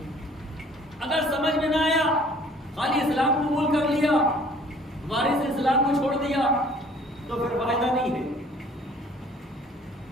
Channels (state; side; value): normal; both; correlation 0.55